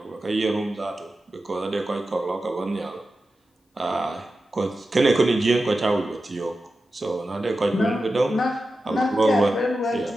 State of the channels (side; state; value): both; normal; correlation 0.92